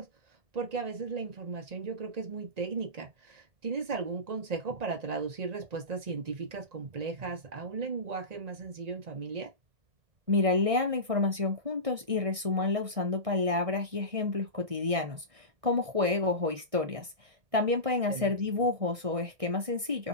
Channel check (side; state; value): left; late; 1.6 ms